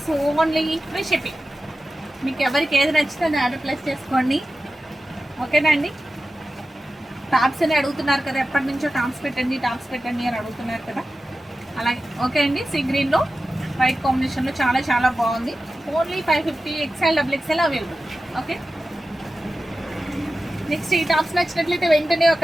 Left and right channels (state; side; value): normal; both; correlation 0.94